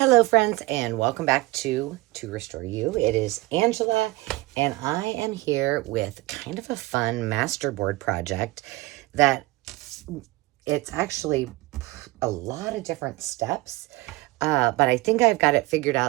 Hello friends, and welcome back to Restore You. It is Angela, and I am here with kind of a fun masterboard project that it's actually a lot of different steps, but I think I've got it figured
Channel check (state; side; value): quieter; left; 20.6 dB